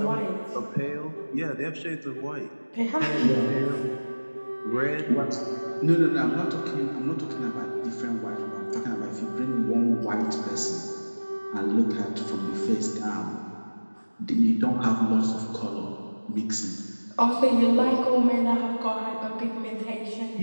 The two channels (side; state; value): both; inverted; correlation -1.00